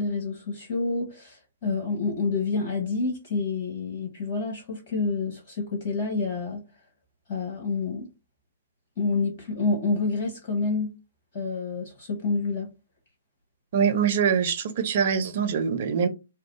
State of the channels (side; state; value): both; inverted; correlation -0.43